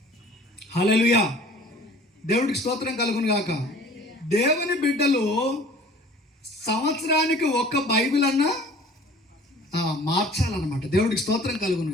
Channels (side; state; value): both; normal; correlation 0.48